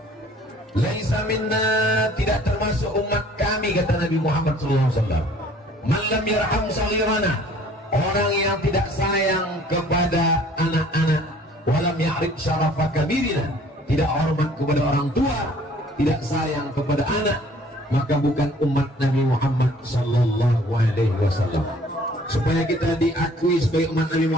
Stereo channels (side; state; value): both; normal; correlation 0.55